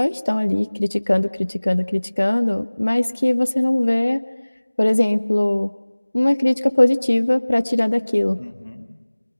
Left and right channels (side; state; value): both; inverted; correlation -1.00